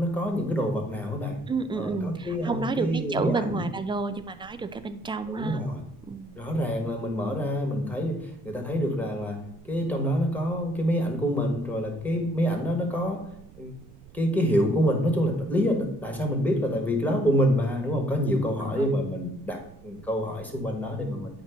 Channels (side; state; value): right; noise; rumble, 22 dB below the sound